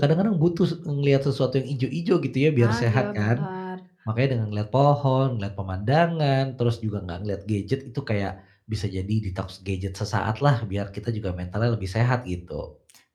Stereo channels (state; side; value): identical; both; correlation 1.00